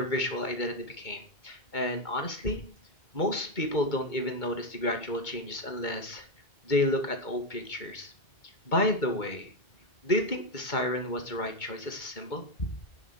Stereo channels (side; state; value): right; late; 2.2 ms